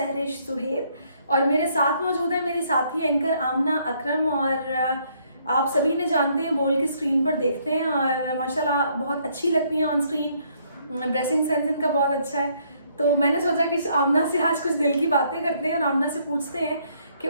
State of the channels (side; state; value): both; inverted; correlation -0.68